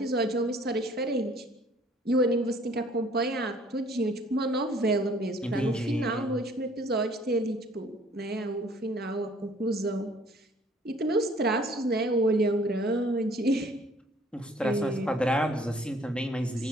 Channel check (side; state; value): both; normal; correlation 0.57